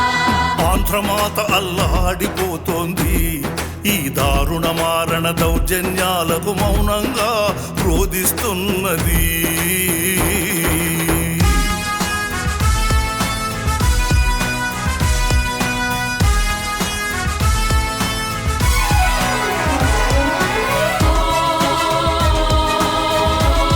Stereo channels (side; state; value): both; identical; correlation 1.00